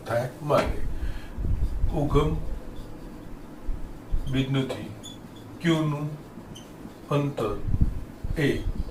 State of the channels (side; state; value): both; identical; correlation 1.00